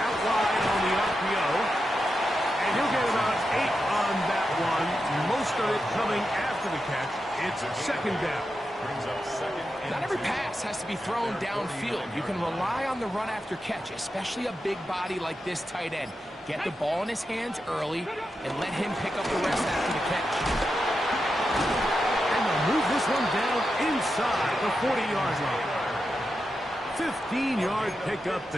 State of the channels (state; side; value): normal; both; correlation 0.88